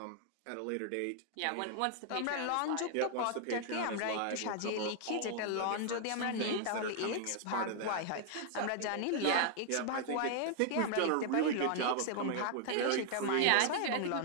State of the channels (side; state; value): both; different; correlation 0.00